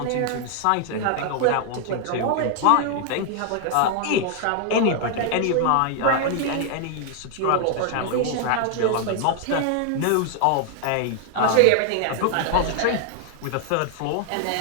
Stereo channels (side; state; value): both; different; correlation 0.00